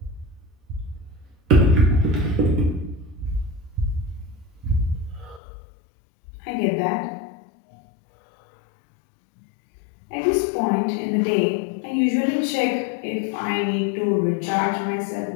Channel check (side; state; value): right; drops out; at 5.4 s